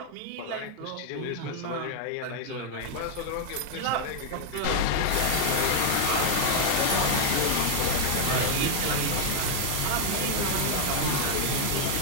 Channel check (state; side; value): different; both; correlation 0.00